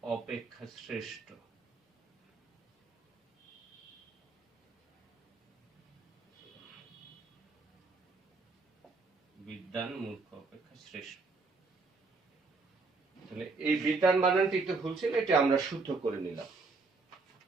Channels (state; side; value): quieter; left; 4.0 dB